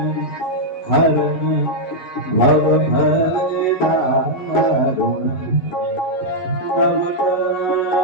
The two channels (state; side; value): late; right; 11 ms